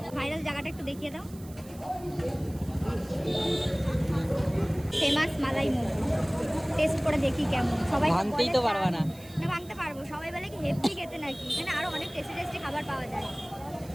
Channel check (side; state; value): right; noise; hiss, 22 dB below the sound